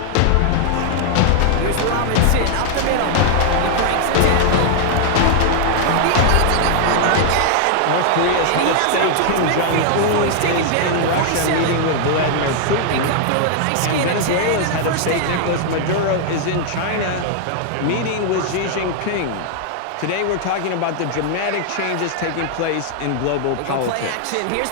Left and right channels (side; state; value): both; different; correlation 0.00